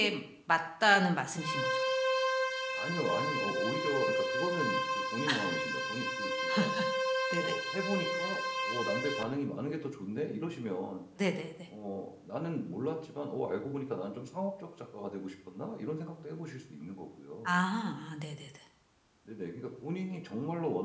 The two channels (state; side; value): identical; both; correlation 1.00